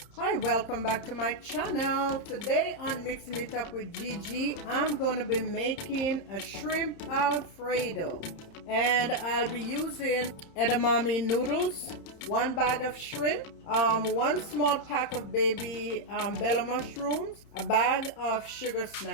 Hi, welcome back to my channel. Today on Mixing It Up with Gigi, I'm going to be making a shrimp Alfredo. And I'll be using edamame noodles, 1 bag of shrimp, 1 small pack of baby bella mushrooms, a bag of sugar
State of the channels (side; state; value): right; late; 30 ms